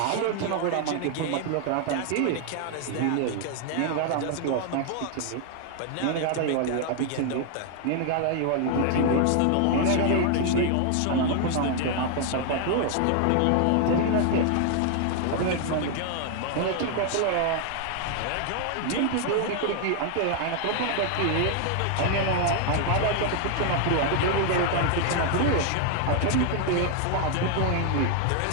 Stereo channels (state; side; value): different; both; correlation 0.00